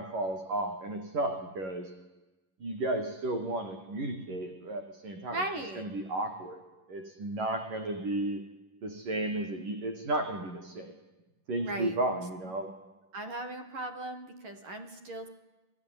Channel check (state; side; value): late; left; 11 ms